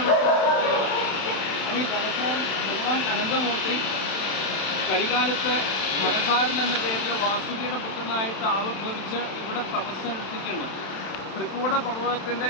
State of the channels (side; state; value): right; late; 31 ms